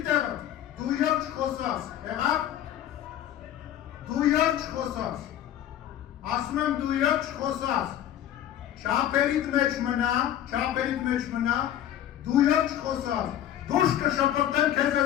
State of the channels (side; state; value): right; quieter; 11.4 dB